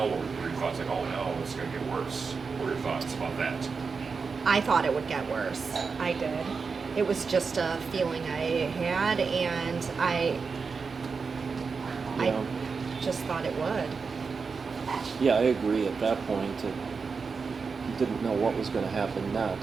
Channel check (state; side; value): quieter; left; 5.1 dB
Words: What were your thoughts? Like, oh no, it's going to get worse. What were your thoughts about that? I thought it would get worse. I did. It was just a feeling I had, and I Yeah. just thought it would. Yeah, I agree. At that point, you didn't know what was going to happen